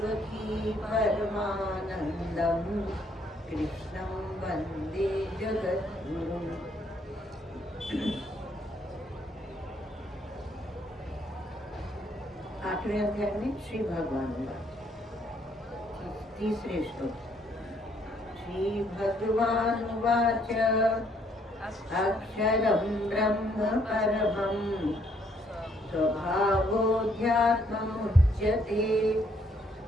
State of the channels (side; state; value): both; normal; correlation 0.68